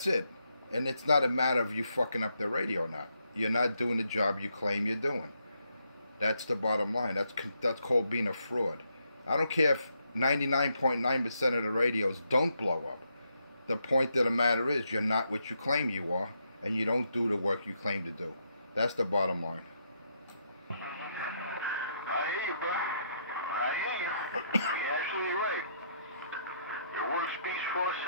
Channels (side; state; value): both; inverted; correlation -0.77